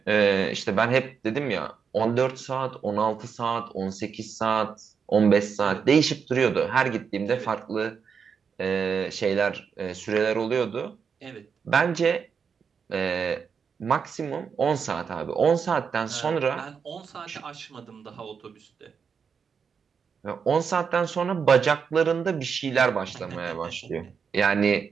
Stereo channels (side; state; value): left; quieter; 6.3 dB